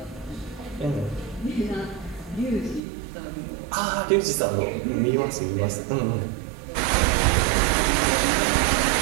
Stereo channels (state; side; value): drops out; left; at 2.8 s